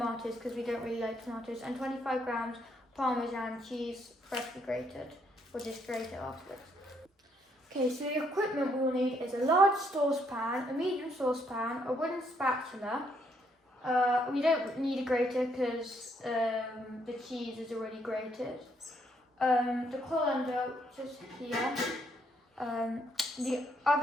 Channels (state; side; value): normal; both; correlation 0.72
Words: because we don't really like tomatoes, and 25 grams Parmesan cheese, freshly grated. We'll just grate it afterwards. Okay, so the equipment we'll need is a large saucepan, a medium saucepan, a wooden spatula. We don't need a grater because the cheese is already grated. The colander, which is here. The